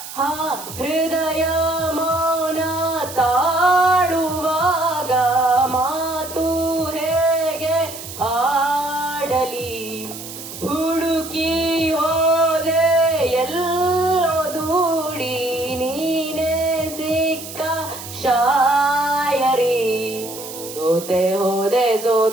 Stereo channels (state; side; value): noise; right; hiss, 12 dB below the sound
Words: ಹೃದಯ ಮೌನ ತಾಳುವಾಗ ಮಾತು ಹೇಗೆ ಆಡಲಿ ಹುಡುಕಿ ಹೋದೆ ಎಲ್ಲೋ ದೂಡಿ ನೀನೇ ಸಿಕ್ಕ ಶಾಯರಿ ಸೋತೆ ಹೋದೆ